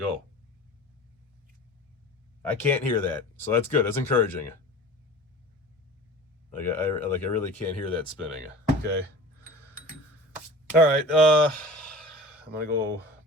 I can't hear that, so that's good. That's encouraging. Like I really can't hear that spinning. Okay. All right. I'm gonna go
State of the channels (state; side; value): normal; both; correlation 0.38